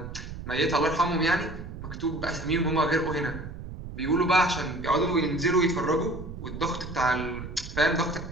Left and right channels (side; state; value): right; noise; rumble, 10 dB below the sound